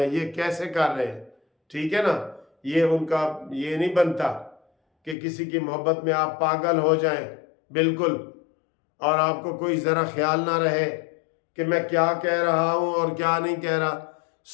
हैं, ये कैसे कर रहे हैं, ठीक है ना। ये उनका ये नहीं बनता कि किसी की मोहब्बत में आप पागल हो जाएं बिल्कुल, और आपको कोई ज़रा ख्याल ना रहे कि मैं क्या कह रहा हूँ और क्या नहीं कह रहा।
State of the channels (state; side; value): drops out; right; at 5.2 s